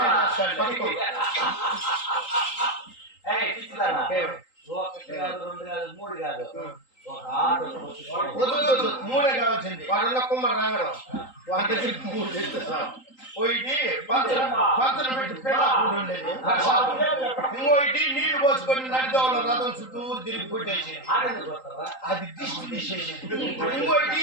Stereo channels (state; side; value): late; right; 3.8 ms